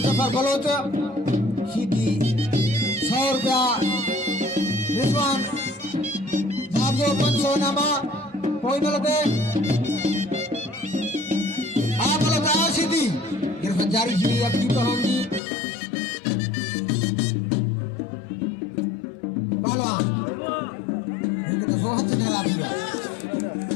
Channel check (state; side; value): drops out; right; at 15.4 s